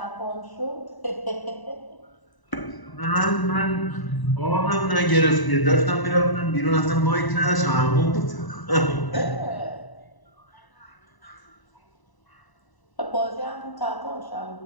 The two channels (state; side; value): late; right; 1.0 ms